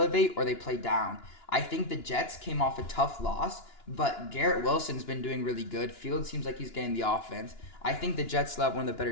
or they play down. I think the Jets came off a tough loss, but Garrett Wilson's been doing really good. Fields seems like he's getting the offense. I think the Jets still have one of the better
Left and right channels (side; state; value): right; late; 2.9 ms